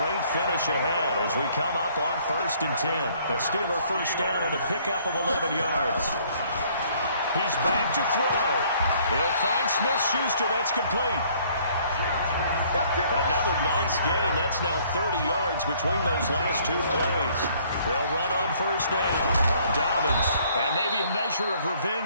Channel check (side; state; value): both; inverted; correlation -0.61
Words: finish ahead as we come up on 1st and 10. A Steeler first down on the pickup of 11 yards. He's back to throw. He'll find Smith-Schuster. That's complete. Another nice gain. That's now 30 yards between those last 2 plays. They'll run on first down. Dobbins, and maybe a measure of